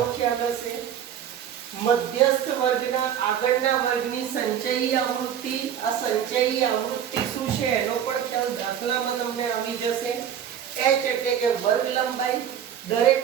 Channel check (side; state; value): left; quieter; 9.2 dB